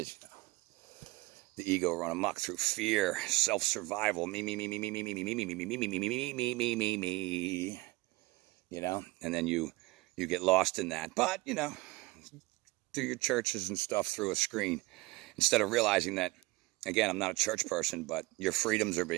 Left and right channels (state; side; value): quieter; left; 21.4 dB